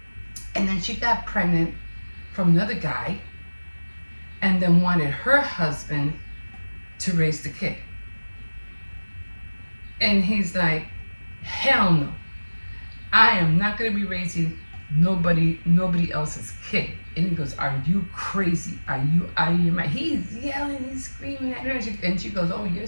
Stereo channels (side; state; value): both; inverted; correlation -1.00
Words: and then she got pregnant from another guy, and then wanted her husband to raise the kid. And he's like, hell no. I am not going to be raising nobody else's kid. And he goes, are you crazy? Are you out of your mind? He's yelling, he's screaming at her. And she goes, oh,